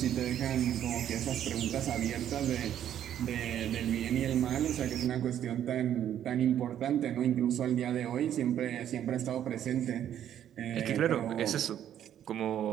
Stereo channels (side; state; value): left; quieter; 10.5 dB